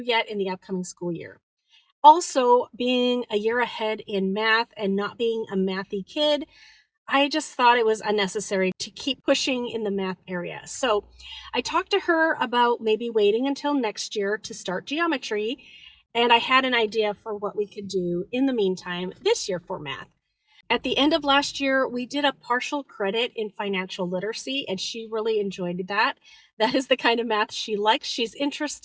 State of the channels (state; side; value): identical; both; correlation 1.00